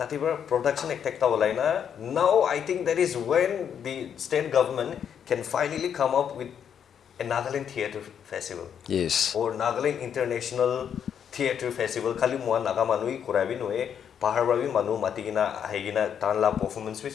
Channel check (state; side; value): quieter; right; 8.3 dB